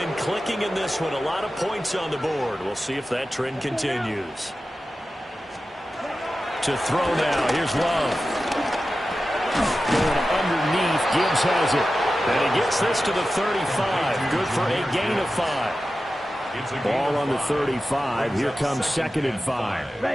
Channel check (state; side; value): normal; both; correlation 0.93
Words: clicking in this one. A lot of points on the board. We'll see if that trend continues. To throw now. Here's Love. Going underneath. Gibbs has it. And he gets this to the 35. Good for a gain of 5. Ball on the 35. Here comes 2nd and 5.